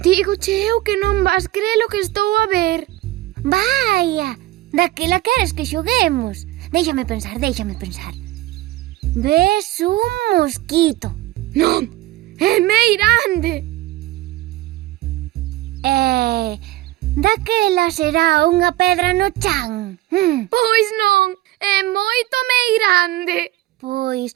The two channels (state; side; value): quieter; left; 16.5 dB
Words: Dígoche eu que non vas crer o que estou a ver. Vaia, daquela queres que xoguemos. Déixame pensar. Ves un mosquito. Non, é meirande. Daquela será unha pedra no chan. Pois non, é moito meirande. Pois